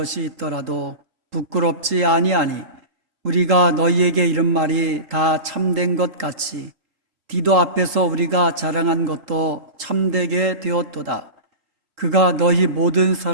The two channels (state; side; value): late; left; 3.8 ms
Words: 있더라도 부끄럽지 아니하니 우리가 너희에게 이런 말이 다 참된 것 같이 디도 앞에서 우리가 자랑한 것도 참되게 되었도다. 그가 너희 모든